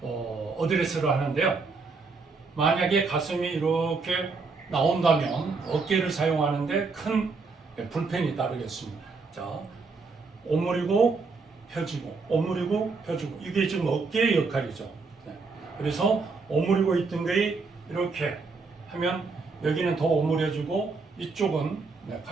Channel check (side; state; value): left; quieter; 4.3 dB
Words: 어드레스를 하는데요. 만약에 가슴이 이렇게 나온다면 어깨를 사용하는데 큰 불편이 따르겠습니다. 자, 오므리고 펴지고, 오므리고 펴지고, 이게 지금 어깨의 역할이죠. 그래서 오므리고 있던 게 이렇게 하면 여기는 더 오므려지고 이쪽은